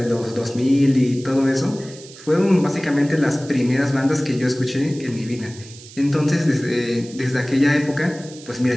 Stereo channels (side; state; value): right; noise; hiss, 19 dB below the sound